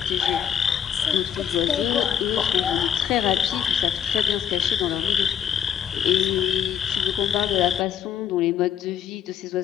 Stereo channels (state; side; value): quieter; right; 8.7 dB